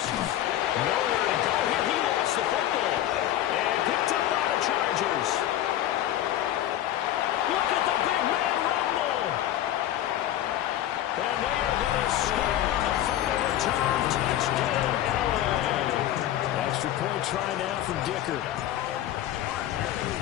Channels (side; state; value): right; quieter; 12.6 dB